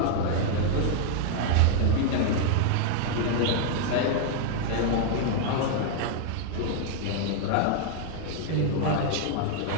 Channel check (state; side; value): different; both; correlation -0.01